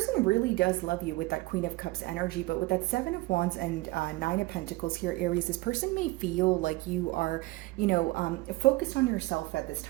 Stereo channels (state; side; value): quieter; left; 20.7 dB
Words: really does love you with that Queen of Cups energy, but with that Seven of Wands and Nine of Pentacles here, Aries, this person may feel like you are, focused on yourself at this